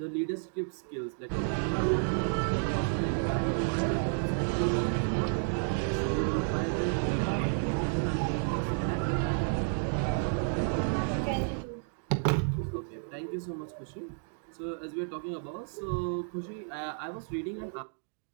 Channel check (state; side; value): silent; left; 57 dB below the other